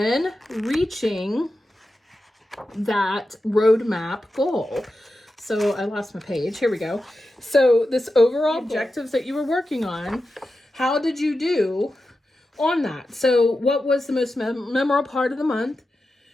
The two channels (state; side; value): normal; both; correlation 0.91